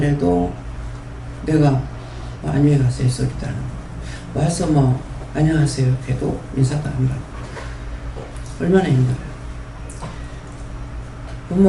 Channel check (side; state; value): both; identical; correlation 1.00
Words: 내가 안녕히 가세요 소리도 안 하고 와서 안녕하세요 해도 인사도 안 받고 얼마나 힘들어요.